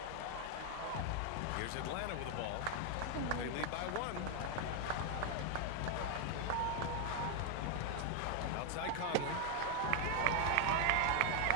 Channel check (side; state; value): both; different; correlation 0.00